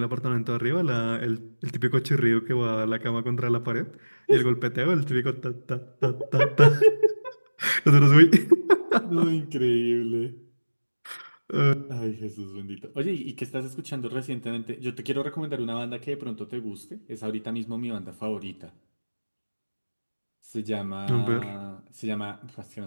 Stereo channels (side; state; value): both; inverted; correlation -1.00